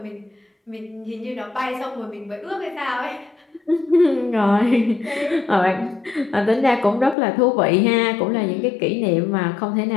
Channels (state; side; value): drops out; right; at 7.2 s